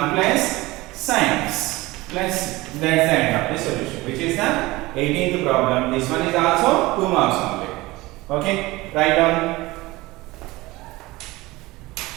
plus sin x plus c. That's the end of the solution, which is the 18th problem. This one is also 2 marks only. Okay, write down.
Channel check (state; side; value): quieter; left; 20.4 dB